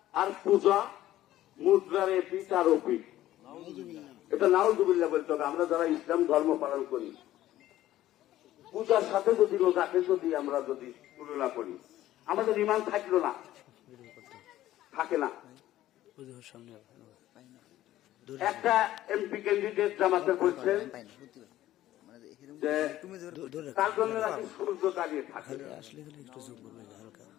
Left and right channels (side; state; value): right; quieter; 14.1 dB